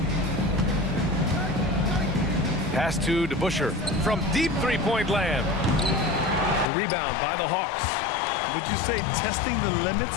Pass to DeBusschere from deep three-point land. The rebound by the Hawks. Would you say testing the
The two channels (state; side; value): drops out; right; at 6.7 s